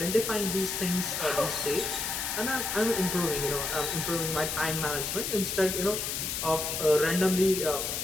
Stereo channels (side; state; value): left; noise; hiss, 2 dB below the sound